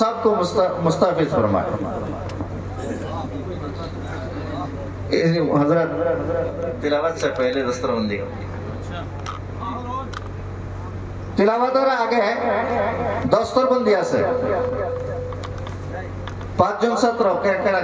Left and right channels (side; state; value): both; identical; correlation 1.00